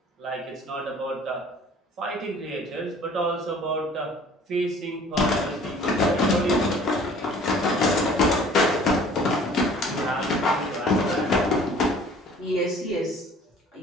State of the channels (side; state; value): both; normal; correlation 0.51